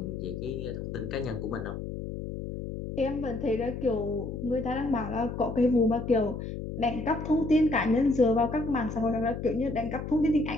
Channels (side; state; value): left; noise; hum, 7 dB below the sound